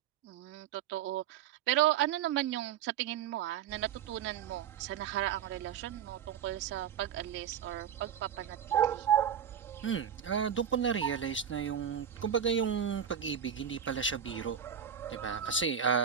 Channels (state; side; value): quieter; left; 8.6 dB